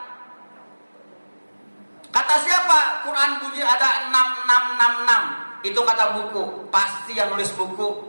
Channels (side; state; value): both; inverted; correlation -1.00